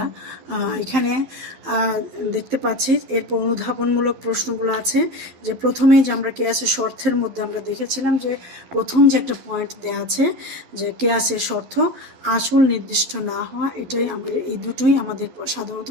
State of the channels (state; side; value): late; left; 12 ms